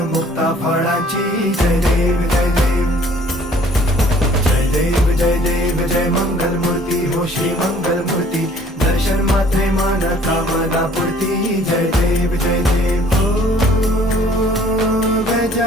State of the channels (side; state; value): both; normal; correlation 0.56